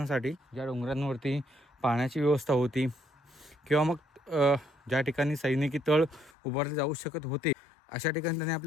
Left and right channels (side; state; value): right; drops out; at 6.3 s